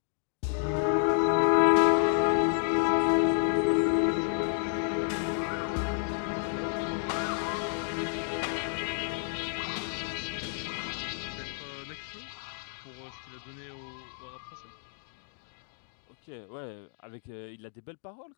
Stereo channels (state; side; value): silent; right; digital silence